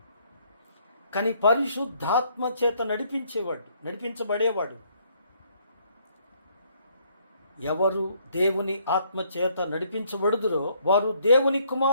కానీ పరిశుద్ధాత్మ చేత నడిపించబడేవాడు ఎవరు దేవుని ఆత్మ చేత నడిపించబడుదురో వారు దేవుని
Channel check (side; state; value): both; inverted; correlation -0.67